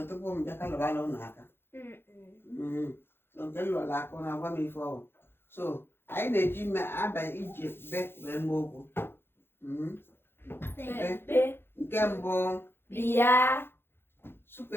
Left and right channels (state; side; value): late; right; 0.11 ms